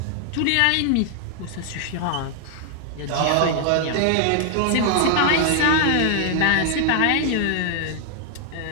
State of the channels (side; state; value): both; different; correlation 0.00